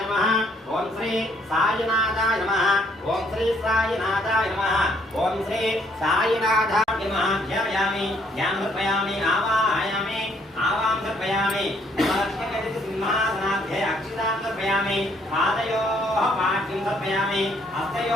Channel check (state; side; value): normal; both; correlation 0.67